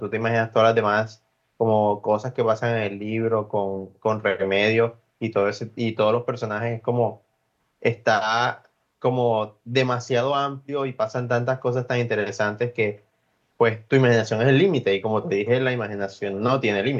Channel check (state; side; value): identical; both; correlation 1.00